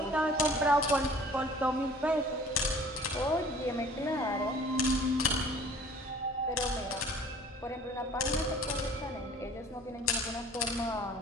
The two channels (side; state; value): both; normal; correlation 0.50